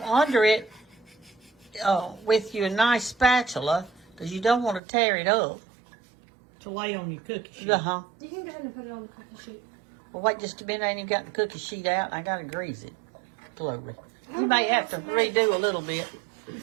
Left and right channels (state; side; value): drops out; left; at 4.8 s